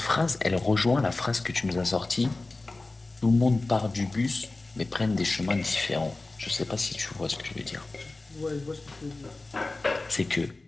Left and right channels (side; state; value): right; quieter; 3.2 dB